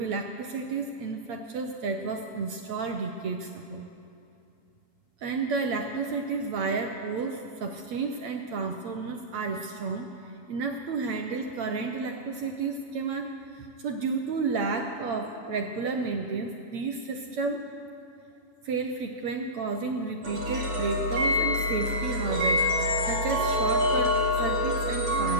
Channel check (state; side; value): late; left; 7.2 ms